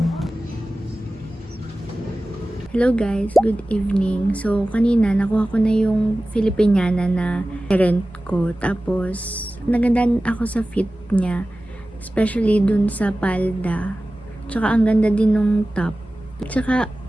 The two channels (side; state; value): both; normal; correlation 0.96